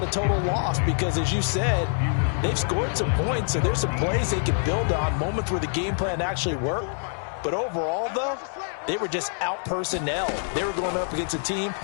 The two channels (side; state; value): right; silent; digital silence